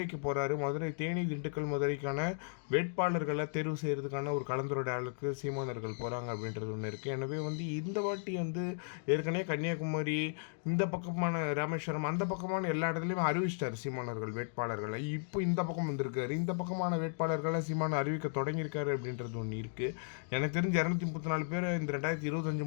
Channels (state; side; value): silent; right; digital silence